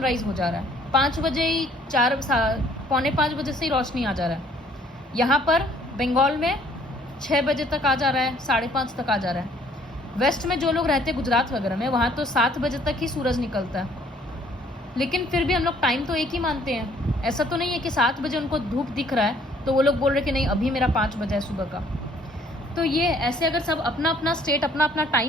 हो जा रहा है, 5 बजे ही, 4 पौने 5 बजे से ही रोशनी आ जा रहा है। यहाँ पर बंगाल में 6 बजे तक आ जा रहा है, 5:30 तक आ जा रहा है। वेस्ट में जो लोग रहते हैं गुजरात वगैरह में, वहाँ तो 7 बजे तक ही सूरज निकलता है, लेकिन फिर भी हम लोग टाइम तो एक ही मानते हैं। ऐसा तो नहीं है कि 7 बजे उनको धूप दिख रहा है तो वो लोग बोल रहे कि नहीं अभी मेरा 5 बजे है सुबह का। तो ये ऐसे अगर सब अपना अपना स्टेट अपना अपना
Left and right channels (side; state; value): both; normal; correlation 0.60